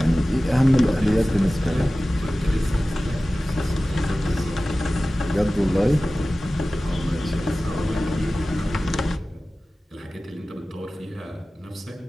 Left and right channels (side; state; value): both; normal; correlation 0.96